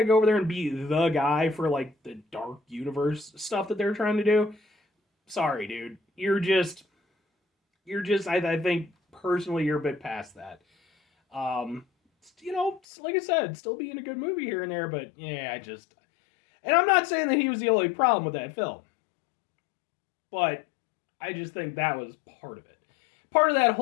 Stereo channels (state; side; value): drops out; right; at 12.8 s